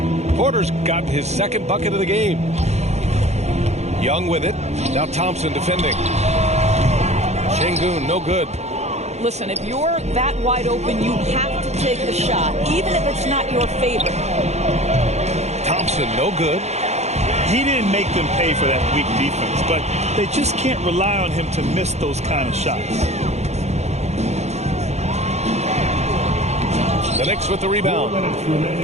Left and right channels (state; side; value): late; left; 0.32 ms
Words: Porter's got his second bucket of the game. Young with it. Now Thompson defending. Şengün, no good. Listen, if you're that wide open, you have to take the shot, even if it's not your favorite. Thompson, no good. He didn't make them pay for that weak defense, but they just can't rely on him to miss those kind of shots. The Knicks with the rebound.